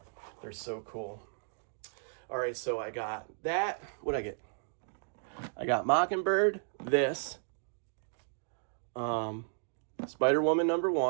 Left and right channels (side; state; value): left; silent; digital silence